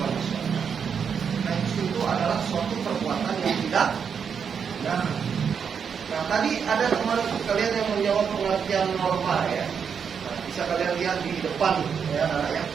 masyarakat. Nah, itu adalah suatu perbuatan yang tidak benar. Nah, tadi ada teman kalian yang menjawab pengertian norma ya. Nah, bisa kalian lihat di depan ya anak-anak.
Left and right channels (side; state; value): left; quieter; 6.8 dB